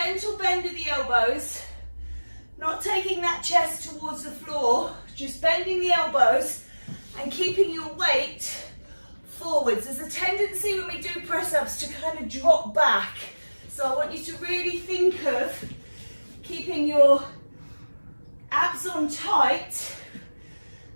bend of the elbows, not taking that chest towards the floor, just bending the elbows and keeping your weight forwards. There's a tendency when we do press ups to kind of drop back. So I want you to really think of keeping your abs on tight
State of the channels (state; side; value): inverted; both; correlation -1.00